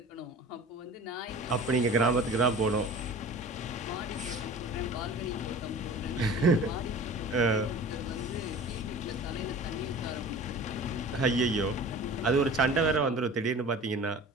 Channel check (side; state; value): both; normal; correlation 0.40